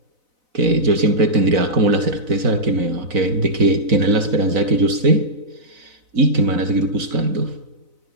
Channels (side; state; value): left; late; 4.0 ms